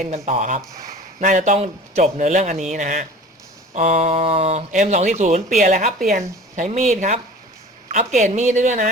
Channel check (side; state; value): both; normal; correlation 0.41